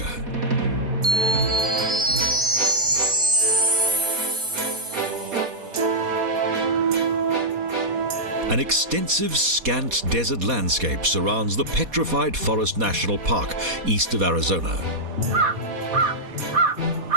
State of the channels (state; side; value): late; left; 4.2 ms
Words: An extensive, scant desert landscape surrounds the Petrified Forest National Park, east of Arizona.